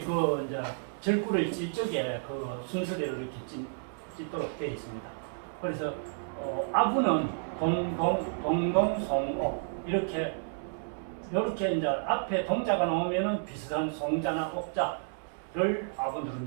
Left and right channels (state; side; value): silent; left; 57 dB below the other